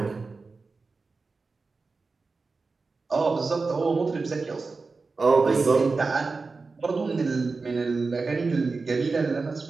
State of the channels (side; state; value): left; quieter; 4.1 dB